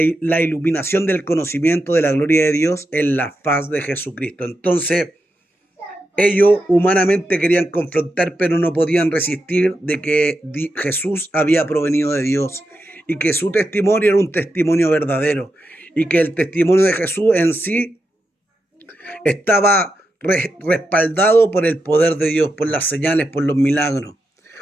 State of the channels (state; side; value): normal; both; correlation 0.87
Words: la iluminación del conocimiento de la gloria de Dios en la faz de Jesucristo. Entonces, ellos humanamente querían confrontar, pero no podían resistir de que Jesús había provenido de Dios y que su testimonio era un testimonio verdadero y que el testimonio de Jesús en sí estaba respaldado por el poder de Dios, por las señales, por los milagros.